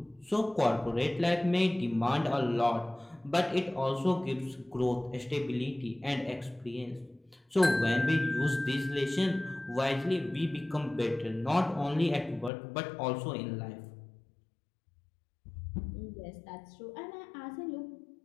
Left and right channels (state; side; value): drops out; right; at 12.5 s